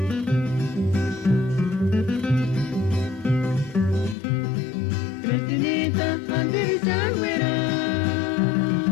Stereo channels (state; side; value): drops out; right; at 4.2 s